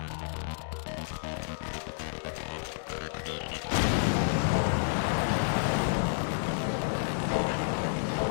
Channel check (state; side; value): silent; right; digital silence